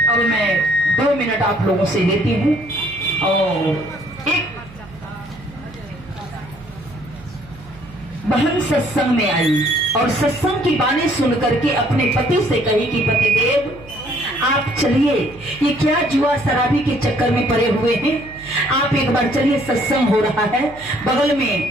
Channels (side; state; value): right; noise; hum, 20 dB below the sound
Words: अब मैं 2 मिनट आप लोगों से लेती हूँ। और एक बहन सत्संग में आई और सत्संग की बातें सुन करके अपने पति से कही कि पतिदेव आप चलिए, ये क्या जुआ शराबी के चक्कर में पड़े हुए हैं, आप एक बार चलिए, सत्संग हो रहा है बगल